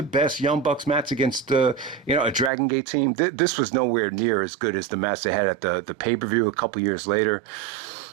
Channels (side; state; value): left; drops out; at 2.5 s